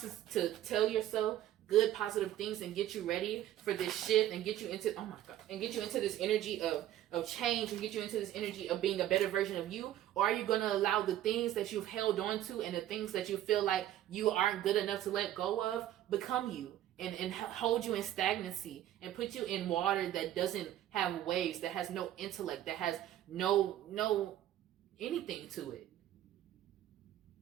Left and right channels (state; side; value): quieter; left; 12.6 dB